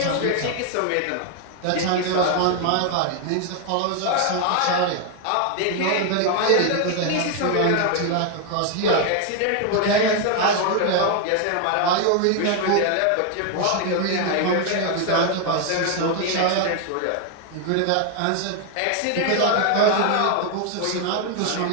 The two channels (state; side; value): different; both; correlation 0.01